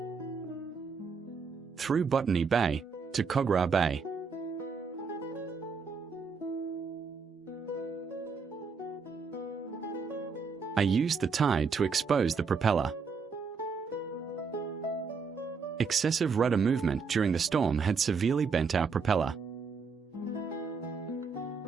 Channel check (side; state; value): left; quieter; 5.2 dB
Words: Through Botany Bay to Kogarah Bay. I used the tide to expose the propeller. Excessive rudder movement during the storm had severely bent our propeller.